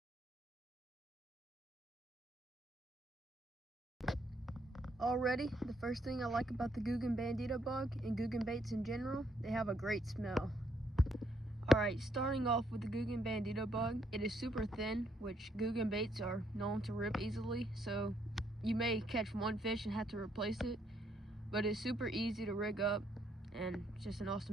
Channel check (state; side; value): normal; both; correlation 0.72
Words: Already, the first thing I like about the Googan Bandito Bug and Googan baits in general, they have a great smell. Alright, starting off with the Googan Bandito Bug, it is super thin, which Googan baits are known to rip easily, so you may catch one fish and have to replace it, but it's super easy to rig up and it's just an